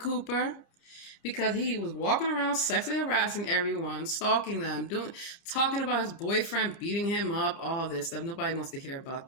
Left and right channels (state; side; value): late; right; 29 ms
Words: Because he was walking around sexually harassing everyone, stalking them, talking about his boyfriend beating him up, all this stuff. Nobody wants to hear about